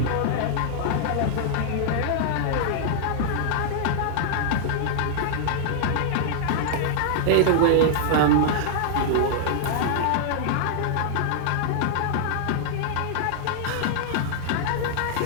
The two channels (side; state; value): both; different; correlation -0.01